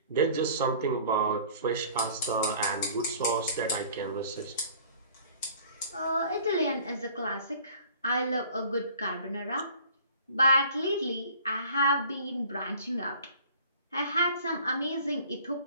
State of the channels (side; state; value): both; inverted; correlation -0.50